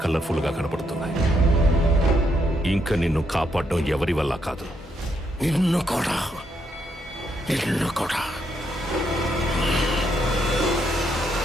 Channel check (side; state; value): both; normal; correlation 0.77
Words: కలర్ఫుల్ గా కనపడుతున్నాయి. ఇంకా నిన్ను కాపాడడం ఎవరి వల్ల కాదు. నిన్ను కూడా